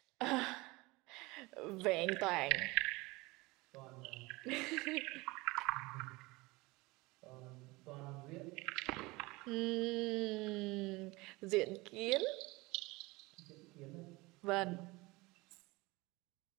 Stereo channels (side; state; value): left; quieter; 22.9 dB